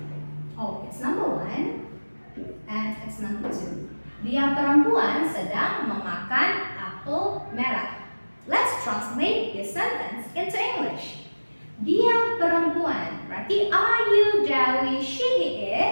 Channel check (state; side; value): inverted; both; correlation -1.00